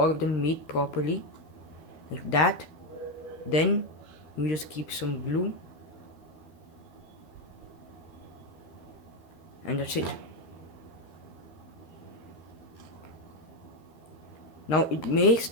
of them meet properly, like that. Then you just keep some glue and that's it. Now it may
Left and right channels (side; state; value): right; late; 13 ms